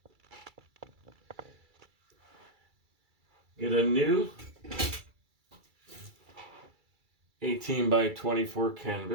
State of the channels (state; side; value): late; left; 2.3 ms